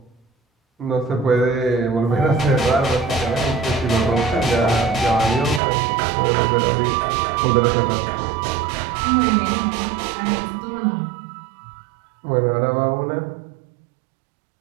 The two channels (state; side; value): drops out; left; at 5.6 s